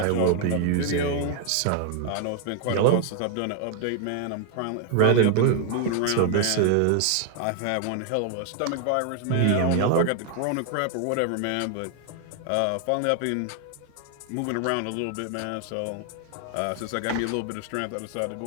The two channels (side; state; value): both; different; correlation 0.00